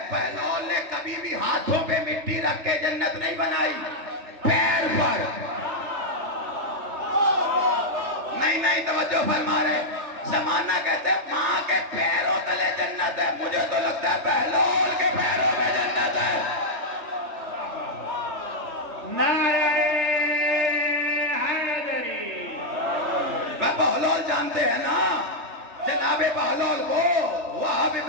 بہلول نے کبھی بھی ہاتھوں پہ مٹی رکھ کے جنت نہیں بنائی, پیر پر. نہیں توجہ فرما رہے. زمانہ کہتے ہیں ماں کے پیروں تلے جنت ہے, مجھے تو لگتا ہے بہلول کے پیروں میں جنت ہے. نعرہ حیدری. بہلول جانتے ہیں نا, جناب بہلول کو وہاب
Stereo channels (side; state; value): left; late; 3.3 ms